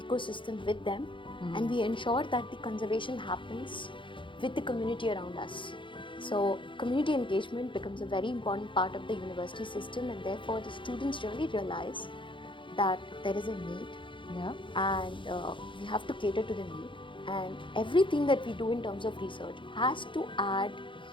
with them, and we ensure that the conservation happens with the community around us. So community engagement becomes a very important part of the university system, and therefore the students really realize that there is a need, and we have to cater to the need. And everything that we do in terms of research has to add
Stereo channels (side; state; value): right; late; 0.24 ms